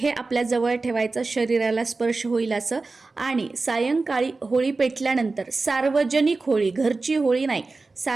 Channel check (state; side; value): quieter; left; 3.7 dB